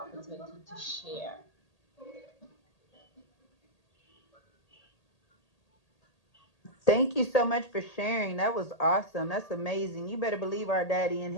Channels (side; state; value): right; late; 1.8 ms